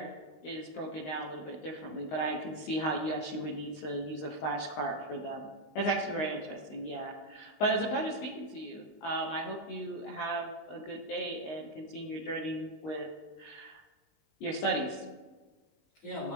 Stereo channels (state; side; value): late; right; 19 ms